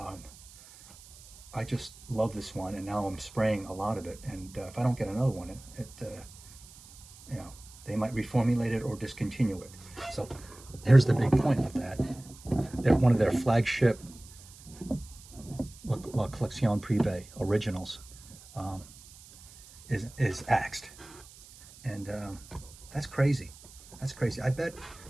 I just love this one, and now I'm spraying a lot of it. And if I don't get another one, you know, they might reformulate it or discontinue it. So here's the big point with that. One of their flagship La Collection Privée originals is axed, and that's crazy. That's crazy. I bet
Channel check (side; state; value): right; noise; hiss, 20 dB below the sound